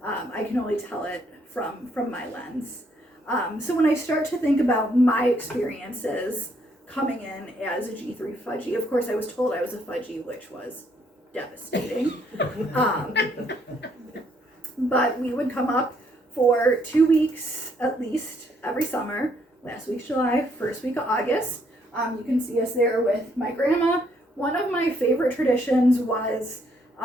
I can only tell it from my lens. So when I start to think about my experiences coming in as a G3 Fudgie, of course I was told I was a Fudgie, which was devastating. But we would come up for 2 weeks at least every summer. Last week's July, first week of August. You can see us there with my grandma. One of my favorite traditions was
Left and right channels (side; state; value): both; normal; correlation 0.70